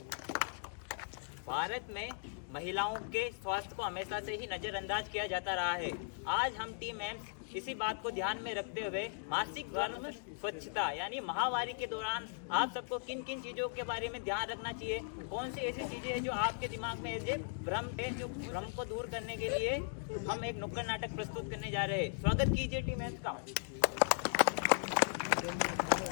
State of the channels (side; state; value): right; silent; digital silence